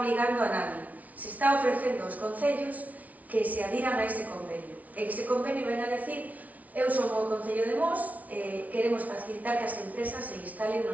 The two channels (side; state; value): left; late; 0.071 ms